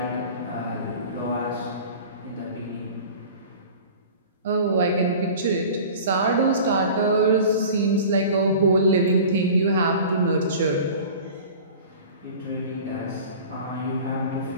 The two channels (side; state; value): both; inverted; correlation -0.40